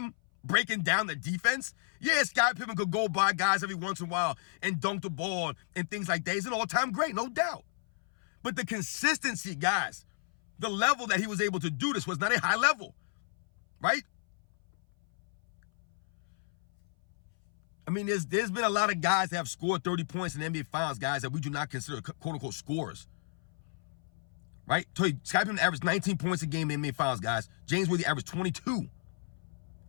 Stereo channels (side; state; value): right; silent; 56 dB below the other